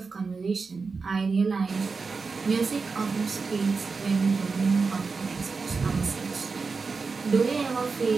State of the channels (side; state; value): left; quieter; 4.6 dB